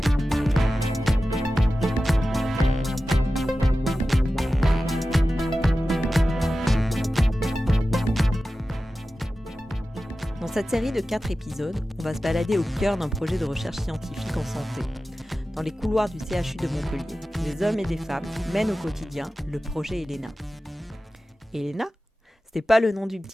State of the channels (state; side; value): normal; both; correlation 0.94